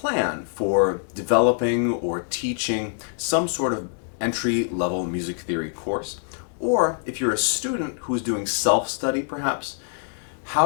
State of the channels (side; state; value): right; silent; 62 dB below the other